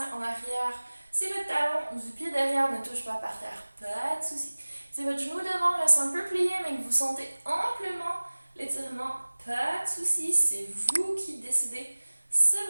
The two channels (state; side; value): inverted; both; correlation -1.00